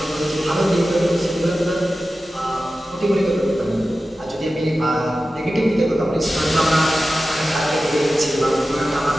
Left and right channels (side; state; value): both; normal; correlation 0.94